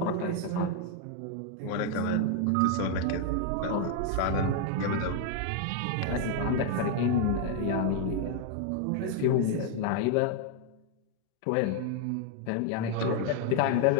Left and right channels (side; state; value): both; different; correlation 0.00